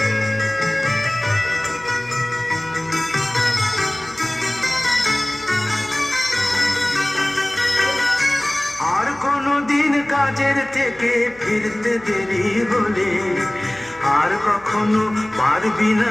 আর কোনদিন কাজের থেকে ফিরতে দেরি হলে, আর কখনো পারবি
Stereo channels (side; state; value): left; noise; hum, 25 dB below the sound